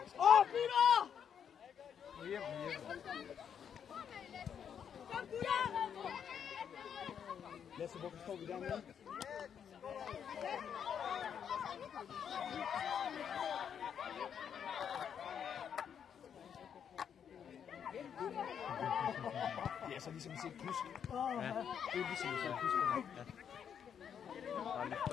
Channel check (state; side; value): quieter; right; 8.1 dB